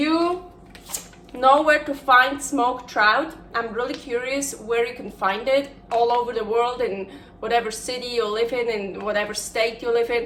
know where to find smoked trout, I'm really curious where you can find it all over the world, in whatever city you live in whatever state you live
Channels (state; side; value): identical; both; correlation 1.00